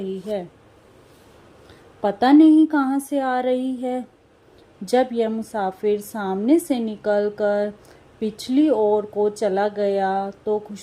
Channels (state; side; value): identical; both; correlation 1.00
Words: है, पता नहीं कहाँ से आ रही है। जब यह मुसाफिर सामने से निकलकर पिछली ओर को चला गया तो